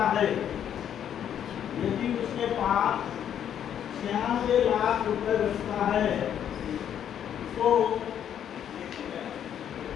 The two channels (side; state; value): right; quieter; 9.5 dB